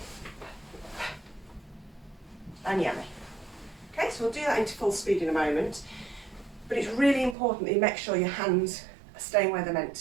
And yummy. Okay, so we'll do that into full speed in a moment, but it's really important that you make sure your hands are staying where they're meant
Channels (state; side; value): drops out; left; at 7.4 s